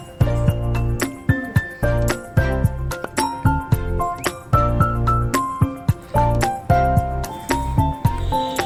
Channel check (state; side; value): identical; both; correlation 1.00